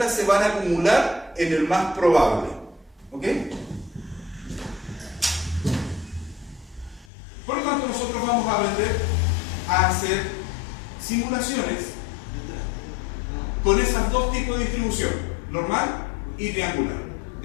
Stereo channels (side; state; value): right; drops out; at 7.1 s